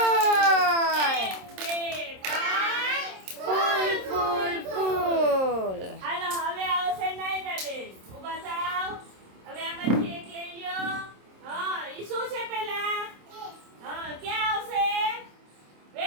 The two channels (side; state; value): left; late; 27 ms